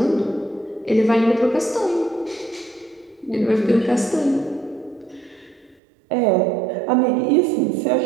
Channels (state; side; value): drops out; left; at 5.8 s